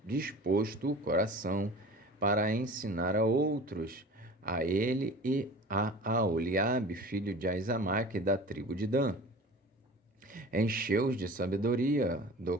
disposto o coração para ensinar a outros, a ele e a Aholiabe, filho de Aizamaque, da tribo de Dan. Encheu-os de sabedoria do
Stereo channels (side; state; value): both; normal; correlation 0.39